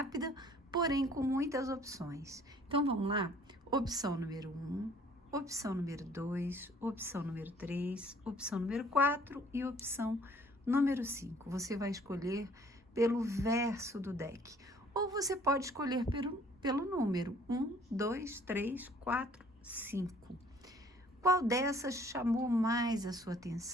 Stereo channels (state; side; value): normal; both; correlation 0.57